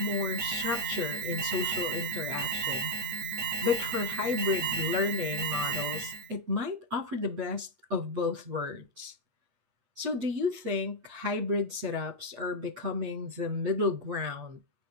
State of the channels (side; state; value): left; late; 8.5 ms